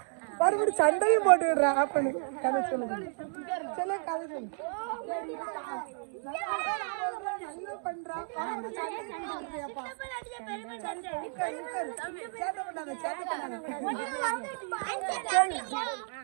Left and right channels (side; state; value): left; silent; 56 dB below the other